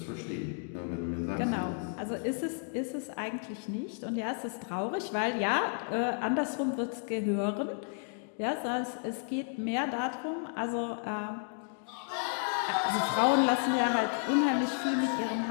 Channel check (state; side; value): silent; right; 56 dB below the other